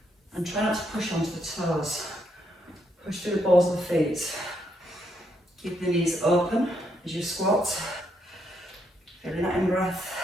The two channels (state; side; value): normal; both; correlation 0.76